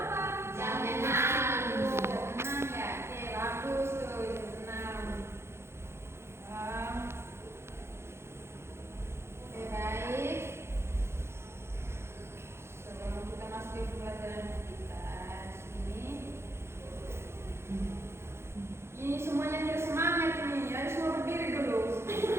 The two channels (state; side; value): late; left; 0.12 ms